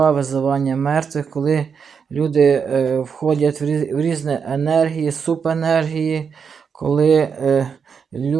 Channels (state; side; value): quieter; left; 6.4 dB